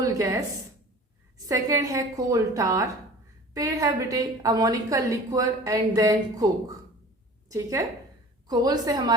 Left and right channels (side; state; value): both; normal; correlation 0.43